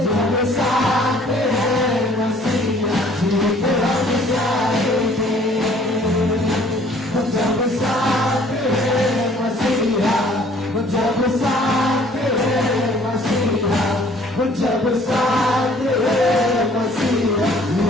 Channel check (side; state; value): both; normal; correlation 0.56